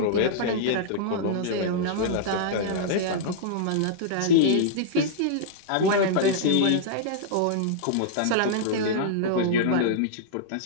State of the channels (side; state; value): both; different; correlation -0.02